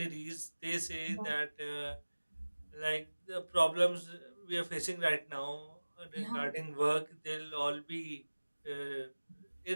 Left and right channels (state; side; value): inverted; both; correlation -1.00